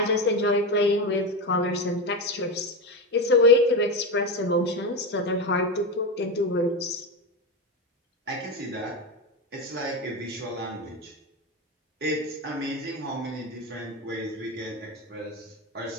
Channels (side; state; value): both; normal; correlation 0.16